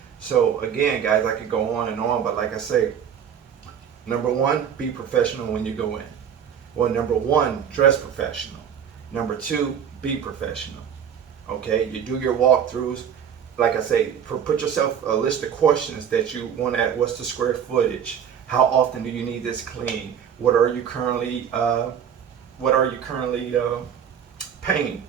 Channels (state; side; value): quieter; left; 8.3 dB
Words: so again, guys, I could go on and on, but like I say, number one, be professional when you go in. Well, number one, dress professional. Number two, be professional. Okay, you do your walkthroughs. Like I say, put yourself a list of questions that you want to add. What's the square footage? How often do you need this clean? What are you currently paying